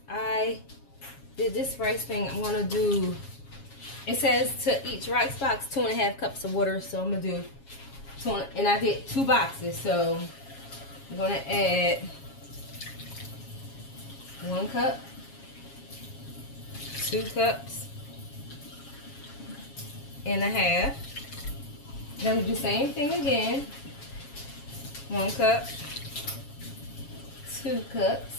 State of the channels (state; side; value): late; right; 7.3 ms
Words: I did this rice thing, I'm gonna do, it says to each rice box 2.5 cups of water, so I'm gonna do and I did 2 boxes, so I'm gonna add 1 cup, 2 cups and a half. Then we do the same thing again. 1 cup, 2